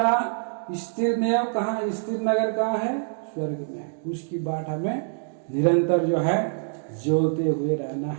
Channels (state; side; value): silent; left; digital silence